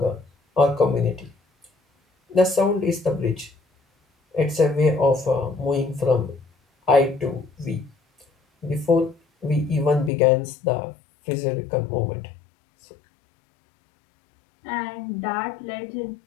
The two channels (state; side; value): drops out; right; at 10.1 s